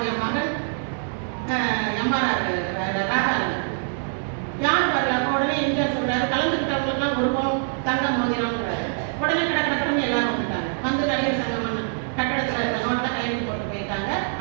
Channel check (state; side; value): silent; left; 62 dB below the other